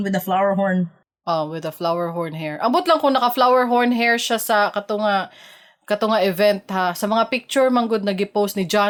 with a flower horn. With a flower horn hair. Ambot lang kung naka flower horn hair siya sa katunga kato nga event ha. Sa mga picture manggod nag-post ni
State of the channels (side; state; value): both; identical; correlation 1.00